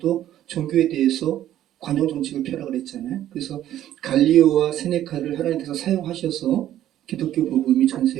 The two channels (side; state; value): left; quieter; 12.3 dB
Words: 종교에 대해서 관용 정책을 펴라고 그랬잖아요. 그래서 갈리오와 세네카를 하나님께서 사용하셔서 기독교 복음이 전